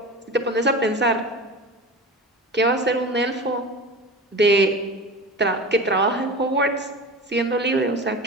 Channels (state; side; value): normal; both; correlation 0.31